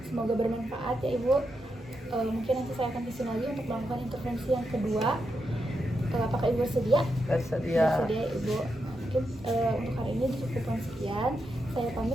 Semoga bermanfaat ya ibu. Mungkin nanti saya akan kesini lagi untuk melakukan intervensi yang kedua. Apakah ibu bersedia? Bersedia. Bersedia ya ibu. Mungkin untuk hari ini cukupkan sekian. Saya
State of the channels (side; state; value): both; normal; correlation 0.85